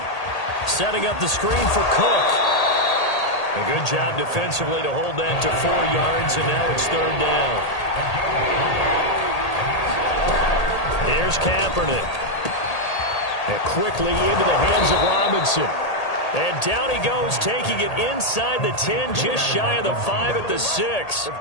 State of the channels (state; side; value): late; right; 1.8 ms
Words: Setting up the screen for Cook. A good job defensively to hold that to 4 yards, and now it's 3rd down. Here's Kaepernick. And quickly into the hands of Robinson. And down he goes, taking it inside the 10, just shy of the 5 at the 6.